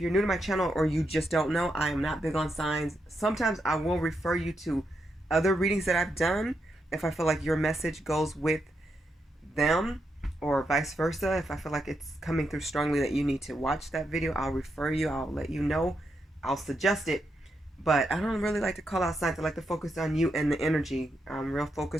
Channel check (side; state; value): both; normal; correlation 0.83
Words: you're new to my channel or you just don't know, I am not big on signs. Sometimes I will refer you to other readings that I've done if I feel like your message goes with them, or vice versa. If I feel like it's coming through strongly that you need to watch that video, I'll refer you, I'll let you know, I'll suggest it. But I don't really like to call out signs. I like to focus on you and the energy. I'm real